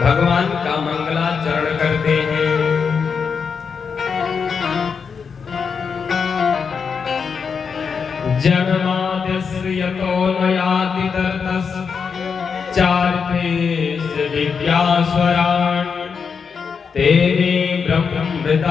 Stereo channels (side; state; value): right; quieter; 6.0 dB